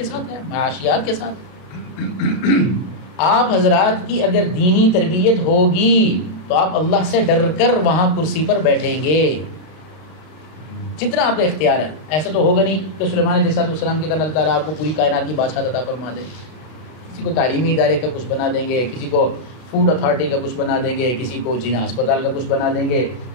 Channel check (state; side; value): late; right; 32 ms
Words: ساتھ ہے، معاشیات کے ساتھ۔ آپ حضرات کی اگر دینی تربیت ہوگی تو آپ اللہ سے ڈر کر وہاں کرسی پر بیٹھیں گے جتنا آپ کا اختیار ہے۔ ایسا تو ہوگا نہیں کہ سلیمان علیہ السلام کی طرح اللہ تعالیٰ آپ کو پوری کائنات کی بادشاہت عطا فرما دے، کسی کو تعلیمی ادارے کا کچھ بنا دیں گے، کسی کو فوڈ اتھارٹی کا کچھ بنا دیں گے، کسی کو جینا ہسپتال کا کچھ بنا دیں گے،